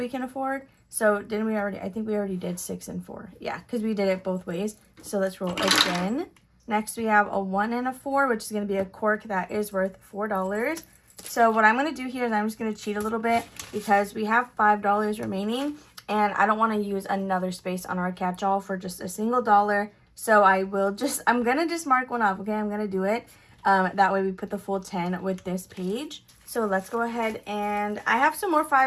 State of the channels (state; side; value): identical; both; correlation 1.00